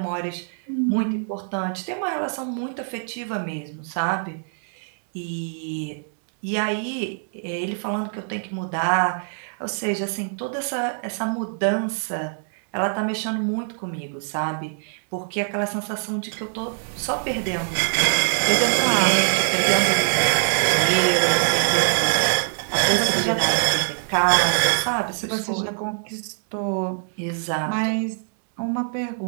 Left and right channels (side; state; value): left; silent; 63 dB below the other